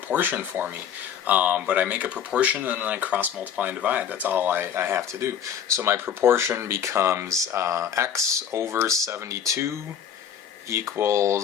for me. But I make a proportion and then I cross multiply and divide. That's all I have to do. So my proportion becomes x over 72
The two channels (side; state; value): right; quieter; 8.6 dB